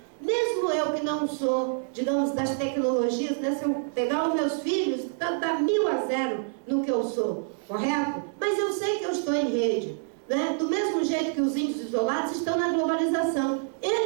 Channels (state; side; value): silent; left; 60 dB below the other